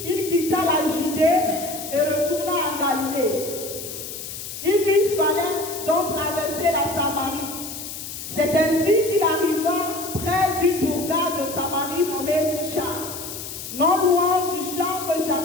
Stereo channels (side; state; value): left; noise; hiss, 9 dB below the sound